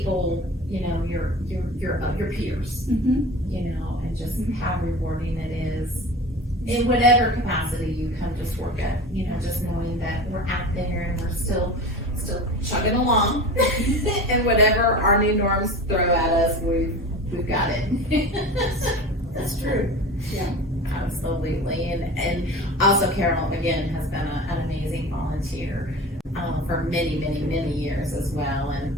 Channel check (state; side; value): normal; both; correlation 0.34